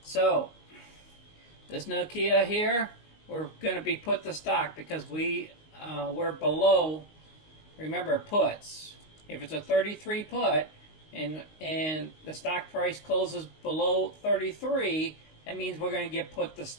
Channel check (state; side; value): late; right; 19 ms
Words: So this Nokia here, we're going to be put to stock because we're below remember puts. If it's a 33 put and the stock price closes below 33, that means we're going to get put the